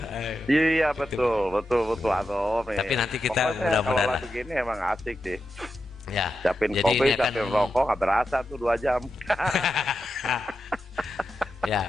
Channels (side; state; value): both; normal; correlation 0.89